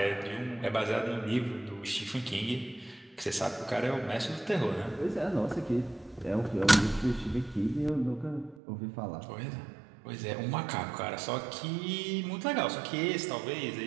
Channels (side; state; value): left; drops out; at 8.6 s